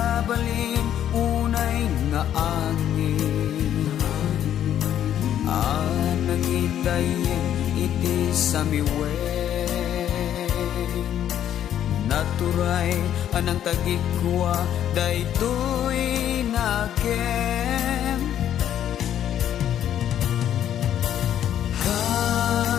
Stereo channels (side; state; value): right; quieter; 10.5 dB